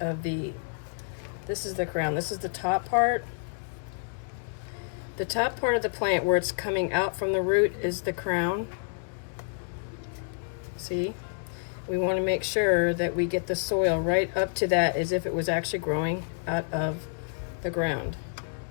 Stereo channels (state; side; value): silent; right; digital silence